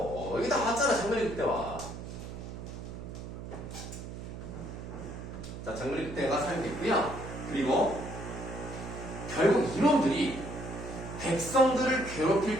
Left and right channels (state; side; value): noise; right; hum, 9 dB below the sound